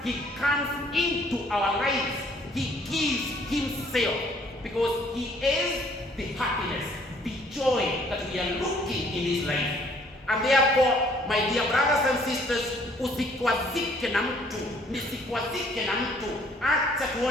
he comes into our lives. He gives himself, because he is the happiness, the joy that we are looking in his life. And therefore, my dear brothers and sisters, usikwazike na mtu, nisikwazike na mtu. Acha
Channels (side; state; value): both; normal; correlation 0.61